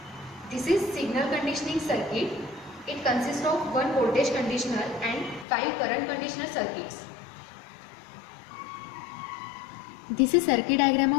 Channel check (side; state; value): right; drops out; at 5.5 s